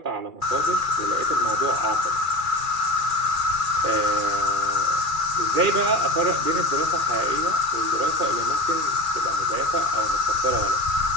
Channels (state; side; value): late; left; 2.3 ms